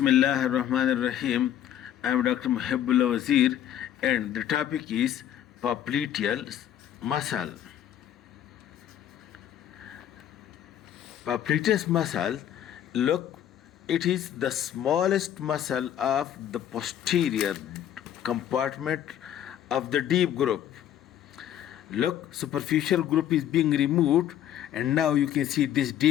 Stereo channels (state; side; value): quieter; right; 10.8 dB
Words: ar-Rahman ar-Rahim. I am Dr. Mohaibullah Wazir, and the topic is Popliteus muscle. Popliteus muscle, look, it is the smallest muscle of the posterior compartment of the deep group. Look, superficial group is being removed, and now you can see this